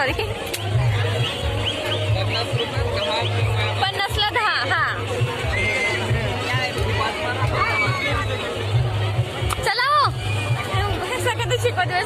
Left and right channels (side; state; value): both; identical; correlation 1.00